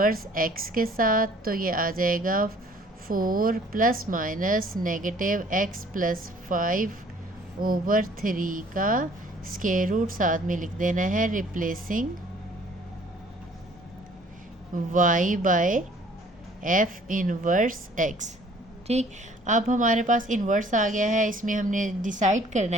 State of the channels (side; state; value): both; normal; correlation 0.56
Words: x के साथ, तो ये आ जाएगा 4 plus minus -x plus 5 over 3 का स्क्वायर रूट, साथ में लिख देना है replacing y by f inverse x। ठीक, अब हमारे पास इन्वर्स आ गया है, इसमें हमने डिसाइड करना